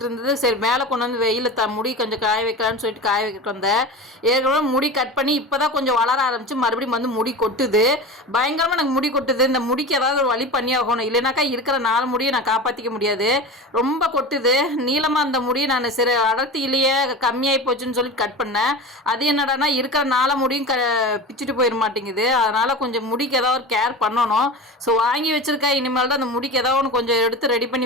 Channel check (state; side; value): normal; both; correlation 0.30